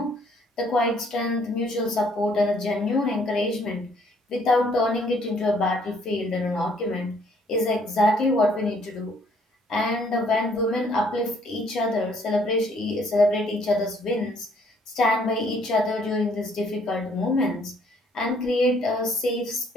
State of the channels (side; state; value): both; normal; correlation 0.64